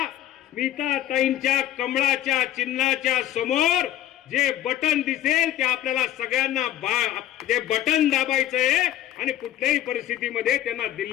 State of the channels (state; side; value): quieter; right; 12.2 dB